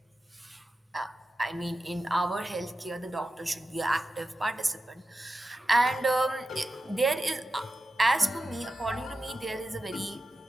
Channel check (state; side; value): normal; both; correlation 0.91